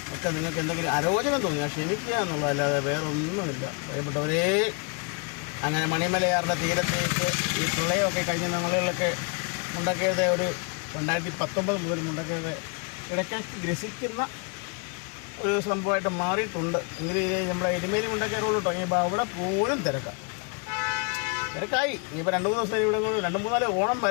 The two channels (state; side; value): quieter; right; 34.6 dB